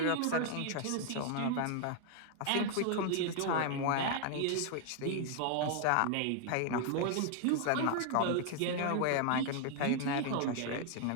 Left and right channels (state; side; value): different; both; correlation 0.00